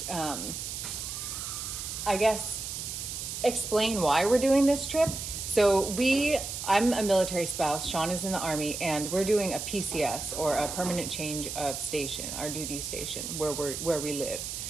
I guess, explain why we're doing this trip. So I'm a military spouse, Sean is in the Army, and we're doing a PCS, or a permanent change of station, our duty station, where we live.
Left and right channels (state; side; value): noise; right; hiss, 6 dB below the sound